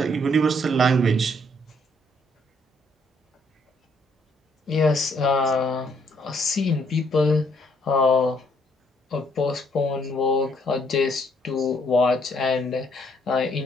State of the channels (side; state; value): both; normal; correlation 0.68